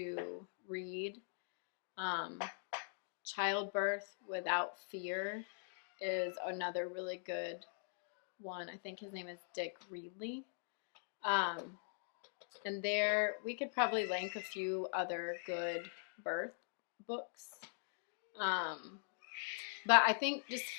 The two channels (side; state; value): right; silent; digital silence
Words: read. Childbirth Without Fear is another really good one. I think his name is Dick Reedley. And there, we could probably link a few other good birth books. But I think just